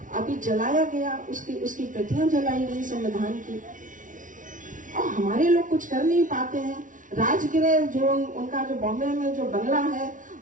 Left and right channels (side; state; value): left; late; 0.38 ms